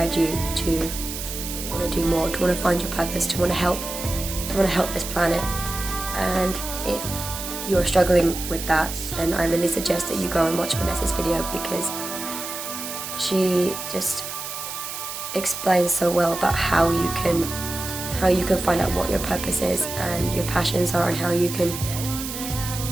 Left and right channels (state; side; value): noise; right; hiss, 7 dB below the sound